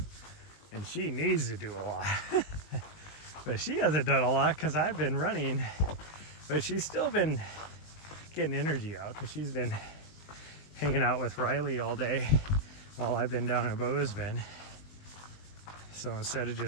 and she needs to do a lot. But she hasn't done a lot because I've been running But she's still been getting energy out because she's been hanging out with Riley all day while I've been down in Bozeman. So instead of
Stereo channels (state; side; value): late; right; 19 ms